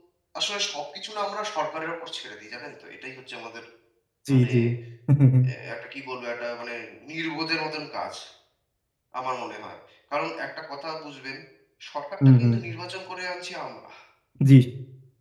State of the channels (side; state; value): both; identical; correlation 1.00